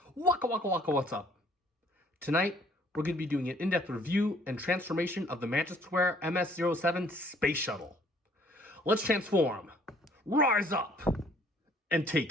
Waka waka waka, what's up? Tonight, we're going to be doing an in-depth review and transformation of the Magic Square MS-07 Space Shuttle. Let's transform, rise up, and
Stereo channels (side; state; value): both; normal; correlation 0.60